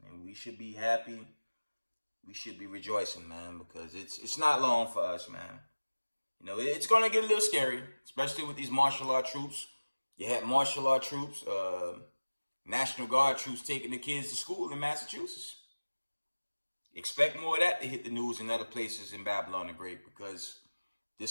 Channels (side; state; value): both; inverted; correlation -1.00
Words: And we should be happy. We should be rejoicing, man, because it's not long for us, man. It's going to get a little scary, especially with these martial law troops. You had martial law troops, National Guard troops taking the kids to school in Massachusetts. Expect more of that to hit the news in other places in Babylon the Great, because